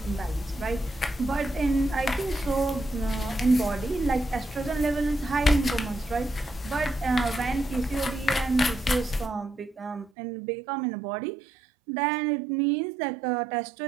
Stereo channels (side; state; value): left; drops out; at 10.1 s